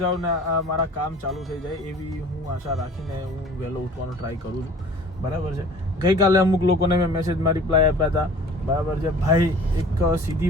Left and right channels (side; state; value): both; normal; correlation 0.47